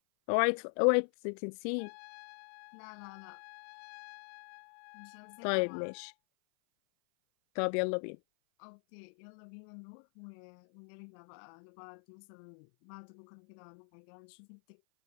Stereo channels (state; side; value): silent; right; 51 dB below the other